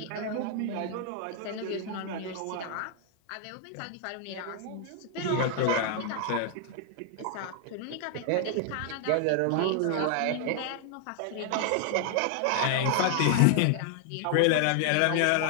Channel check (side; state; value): both; different; correlation 0.00